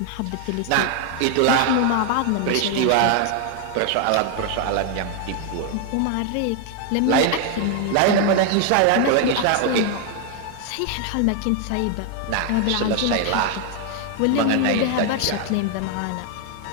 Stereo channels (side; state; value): both; different; correlation 0.00